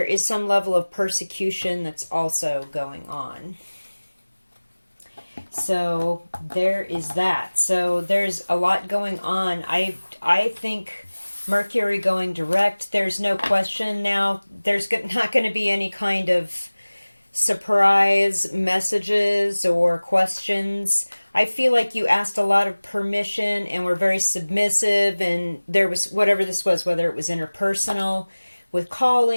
is some level of persecution that's also going on. So there is that. So there's a lot going on. I think Mercury going direct, there's no question now. There's not going to be any kind of surprise messages or questions. I feel like you asked a lot of permission and were very submissive, and there was, whatever this was, whether it was interpersonal with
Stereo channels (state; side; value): inverted; both; correlation -1.00